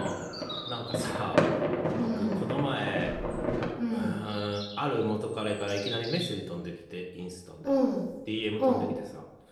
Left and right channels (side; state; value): both; identical; correlation 1.00